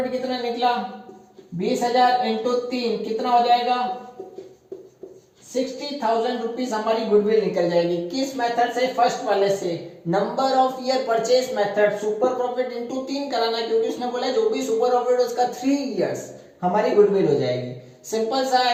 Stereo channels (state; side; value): identical; both; correlation 1.00